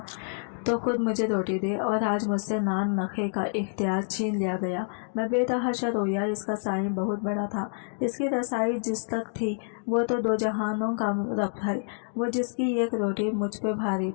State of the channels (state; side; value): silent; right; digital silence